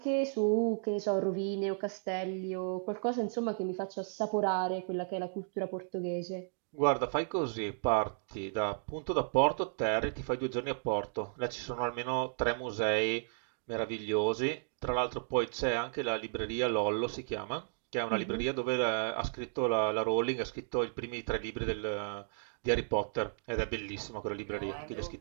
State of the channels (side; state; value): left; silent; digital silence